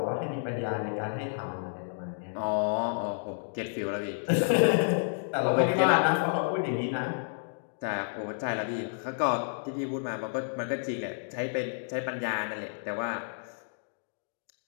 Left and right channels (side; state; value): right; silent; digital silence